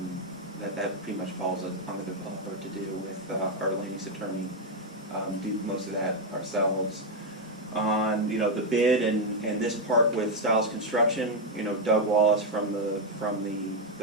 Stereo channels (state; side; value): normal; both; correlation 0.03